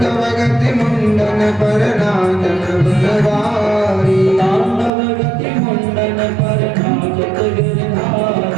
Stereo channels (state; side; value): drops out; left; at 4.9 s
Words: गति मुंडन पर नाचत बनवारी, तांडव गति मुंडन पर नाचत